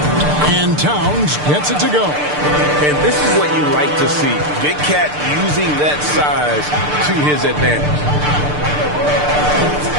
And Towns gets it to go. And this is what you like to see. Big Cat using that size to his advantage.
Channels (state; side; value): late; left; 6.7 ms